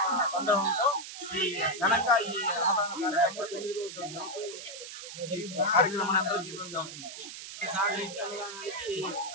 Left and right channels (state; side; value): noise; right; hiss, 11 dB below the sound